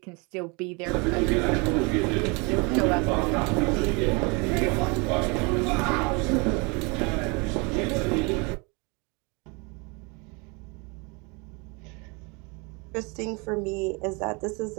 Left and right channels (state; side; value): quieter; left; 29.9 dB